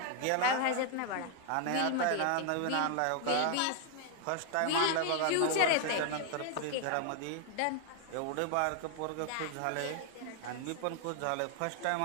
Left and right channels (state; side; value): different; both; correlation 0.00